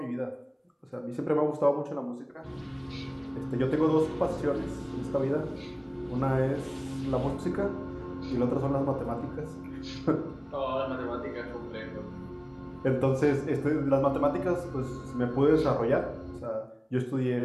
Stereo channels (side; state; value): both; identical; correlation 1.00